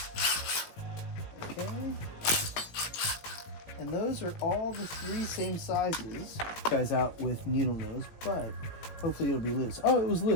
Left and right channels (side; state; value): right; late; 18 ms